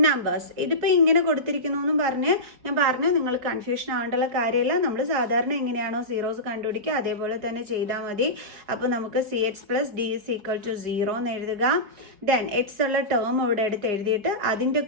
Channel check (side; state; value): left; late; 4.8 ms